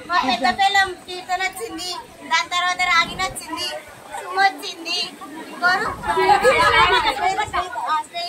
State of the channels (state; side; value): identical; both; correlation 1.00